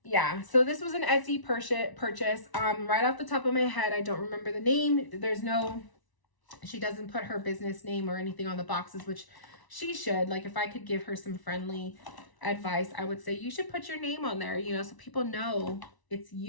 yeah, so this was an Etsy purchase. Right off the top of my head, I don't remember the name. She doesn't put her business name or anything on the boxes, which she should. Like, if I could give her some friendly advice, I would say you should put your name on there, so people know it's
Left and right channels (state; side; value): late; right; 1.0 ms